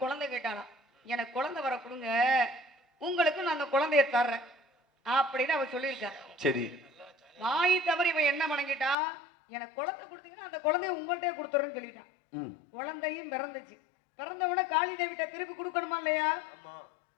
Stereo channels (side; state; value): right; drops out; at 9.0 s